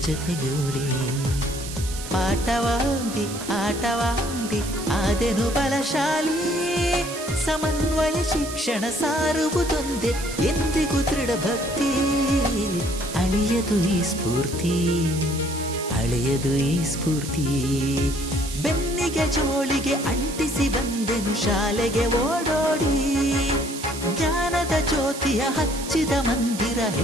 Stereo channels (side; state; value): right; noise; hiss, 10 dB below the sound